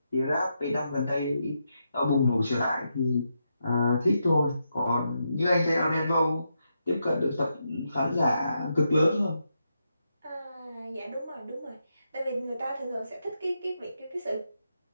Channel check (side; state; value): both; inverted; correlation -0.83